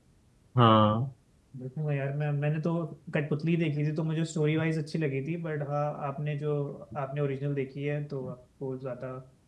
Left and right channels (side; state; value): both; identical; correlation 1.00